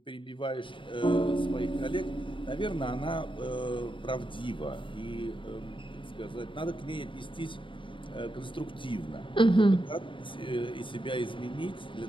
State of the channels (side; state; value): right; late; 0.24 ms